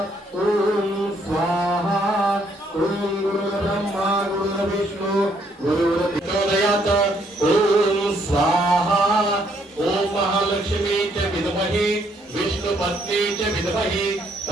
ओम स्वाहा ओम गुरुर्ब्रह्मा गुरुर्विष्णु गुरुर्देवदयात ओम स्वाहा ओम महालक्ष्मी च विद्महे विष्णुपत्नी च विद्महे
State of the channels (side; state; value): both; normal; correlation 0.70